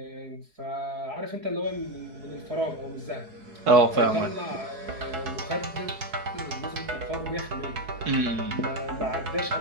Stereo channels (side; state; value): left; late; 4.7 ms